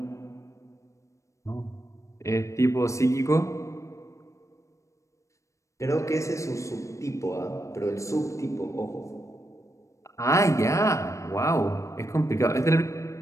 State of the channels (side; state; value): right; late; 0.15 ms